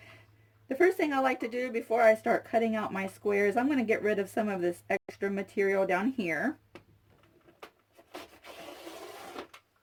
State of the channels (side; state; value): both; identical; correlation 1.00